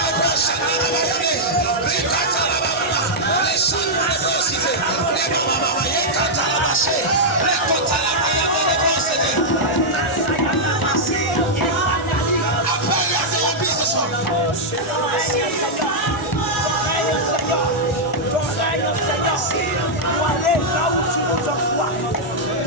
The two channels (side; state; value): both; normal; correlation -0.06